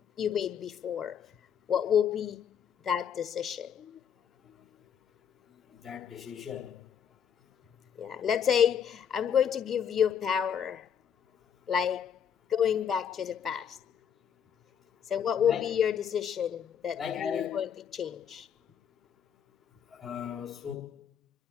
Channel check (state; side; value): quieter; right; 8.1 dB